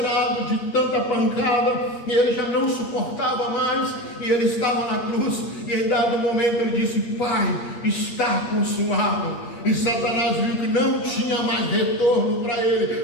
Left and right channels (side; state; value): right; late; 8.5 ms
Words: de tanta pancada, e ele já não suportava mais, e ele estava na cruz, e em dado momento ele disse, Pai, está consumado. E Satanás viu que não tinha mais retorno para